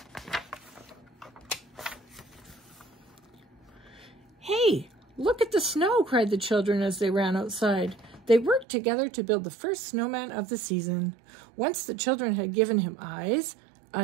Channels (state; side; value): drops out; left; at 8.7 s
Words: Hey, look at the snow, cried the children as they ran outside. They worked together to build the first snowman of the season. Once the children had given him eyes,